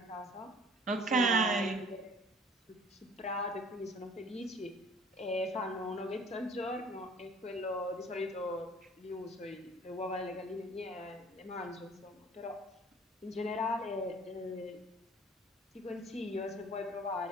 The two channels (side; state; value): both; normal; correlation 0.51